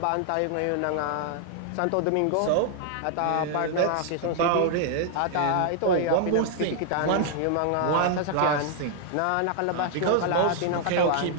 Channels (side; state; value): both; different; correlation -0.01